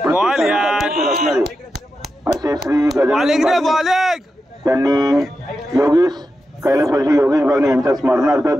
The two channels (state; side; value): normal; both; correlation 0.89